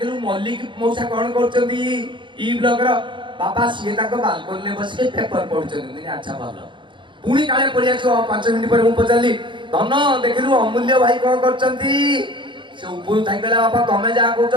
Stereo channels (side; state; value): left; late; 0.23 ms